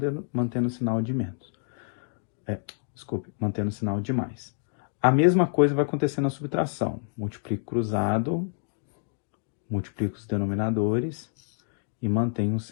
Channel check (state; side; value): silent; right; 59 dB below the other